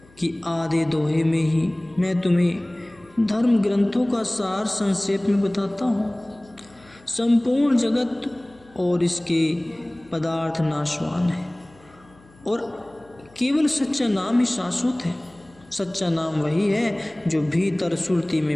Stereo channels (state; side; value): noise; left; hum, 28 dB below the sound